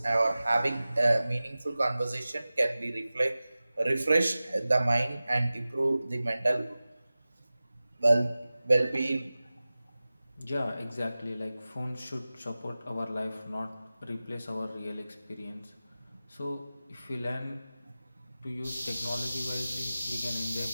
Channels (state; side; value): inverted; both; correlation -0.96